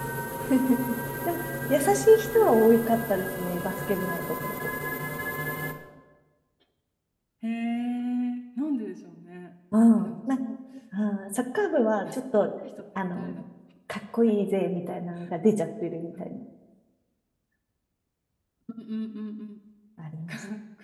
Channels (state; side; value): identical; both; correlation 1.00